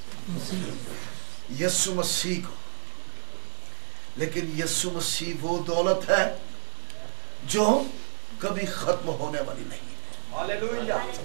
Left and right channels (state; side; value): silent; left; digital silence